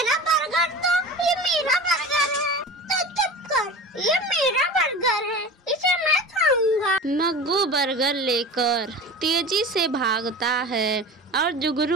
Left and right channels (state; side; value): normal; both; correlation 0.34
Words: बर्गर, तो ये मेरा बर्गर है। तो चुप कर, ये मेरा बर्गर है, इसे मैं खाऊंगा। मग्गू बर्गर लेकर तेजी से भागता है और